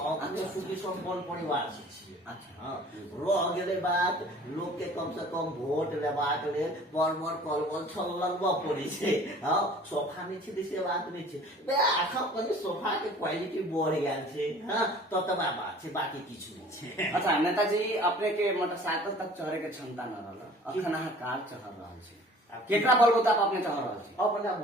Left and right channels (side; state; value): both; normal; correlation 0.48